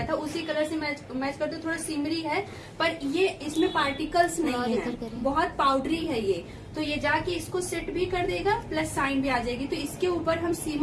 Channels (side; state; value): both; identical; correlation 1.00